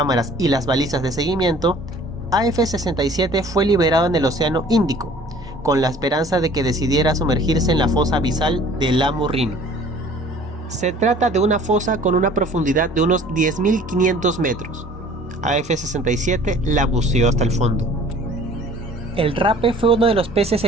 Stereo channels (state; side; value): normal; both; correlation 0.51